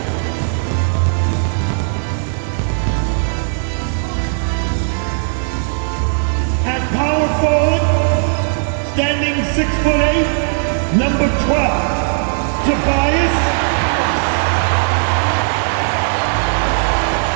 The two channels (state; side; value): silent; left; 68 dB below the other